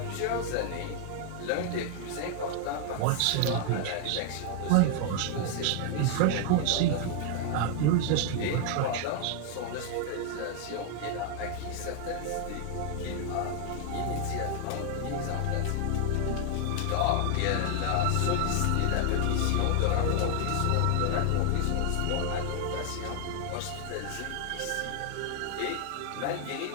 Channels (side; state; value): both; different; correlation 0.00